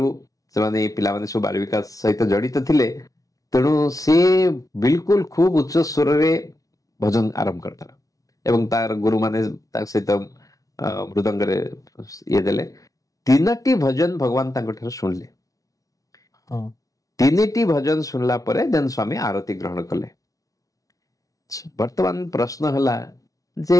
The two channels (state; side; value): late; right; 0.17 ms